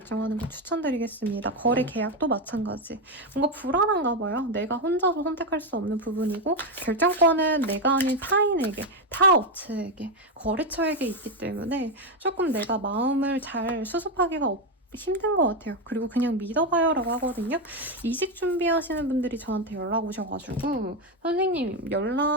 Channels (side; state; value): both; normal; correlation 0.07